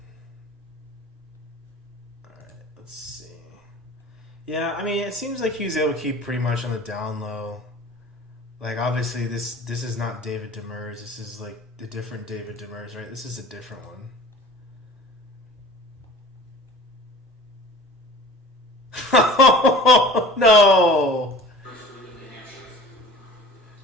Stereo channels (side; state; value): both; normal; correlation 0.42